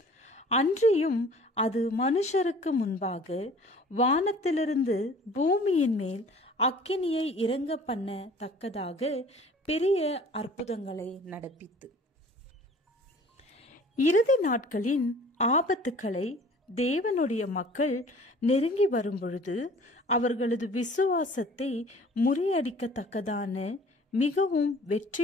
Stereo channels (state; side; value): normal; both; correlation 0.49